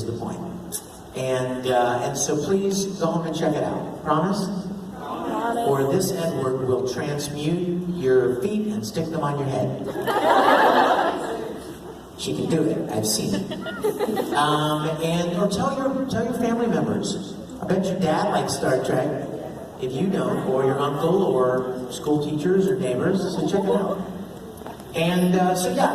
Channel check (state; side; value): identical; both; correlation 1.00